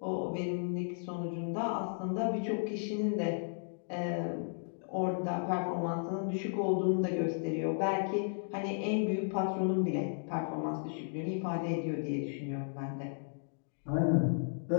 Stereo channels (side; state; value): right; silent; digital silence